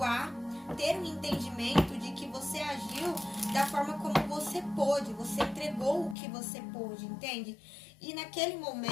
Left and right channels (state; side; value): drops out; right; at 6.2 s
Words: ter um entendimento de que você agiu da forma como você pôde, você entregou o que você pôde, entende? E naquele